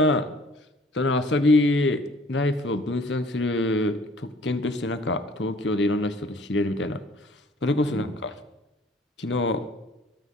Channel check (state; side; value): normal; both; correlation 0.54